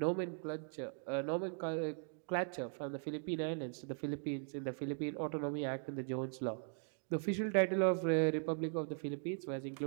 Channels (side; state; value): left; silent; 51 dB below the other